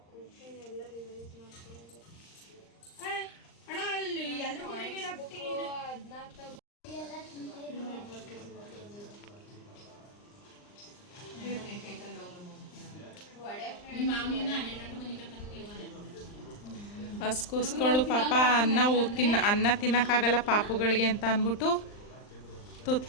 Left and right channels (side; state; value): right; late; 39 ms